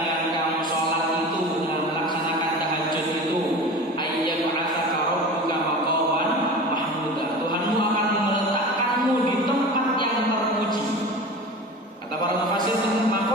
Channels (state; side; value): normal; both; correlation 0.34